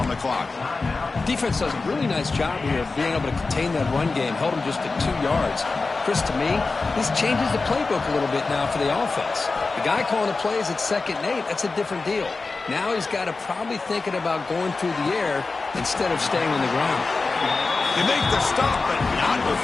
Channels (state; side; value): quieter; right; 3.9 dB